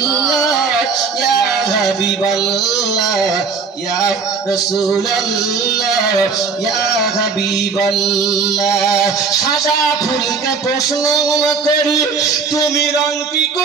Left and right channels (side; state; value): left; quieter; 5.1 dB